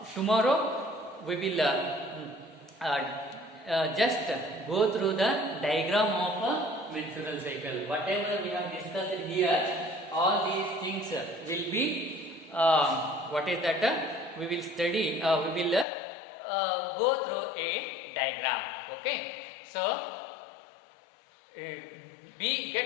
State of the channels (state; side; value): drops out; right; at 15.9 s